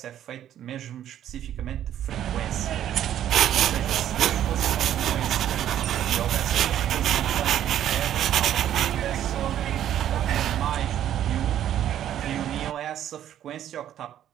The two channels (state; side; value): quieter; left; 11.1 dB